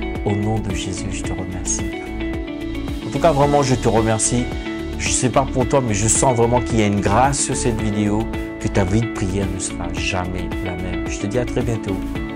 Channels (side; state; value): both; identical; correlation 1.00